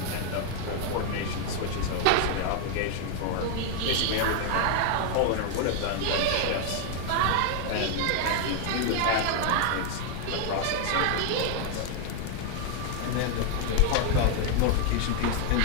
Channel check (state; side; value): different; both; correlation 0.00